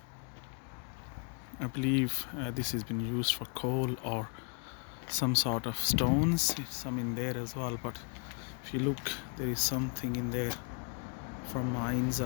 I believe this has been used for coal or some sort of stones. It's some in there as well, but if you look, there is something in there from mines,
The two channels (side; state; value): right; quieter; 39.4 dB